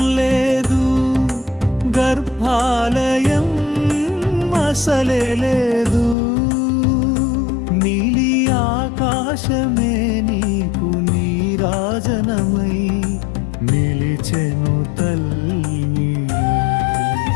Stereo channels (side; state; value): right; drops out; at 6.2 s